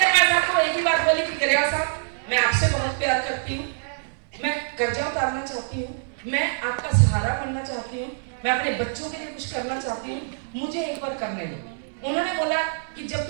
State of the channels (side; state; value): left; silent; 61 dB below the other